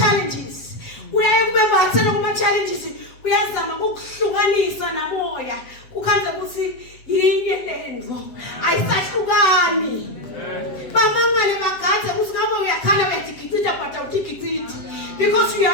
Uyayekubembathela kuma challenges uyazama ukuhlukanisa namoya ukhanza ukuthi yinye lendvo ayisahlukani bamangale bagadze ukuthi ngabe uyakhala bedigicita but awudigiciti because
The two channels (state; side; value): late; right; 7.6 ms